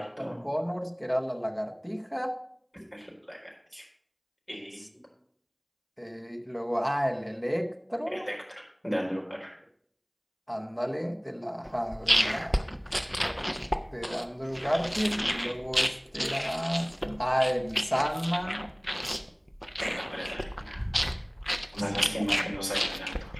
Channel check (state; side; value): identical; both; correlation 1.00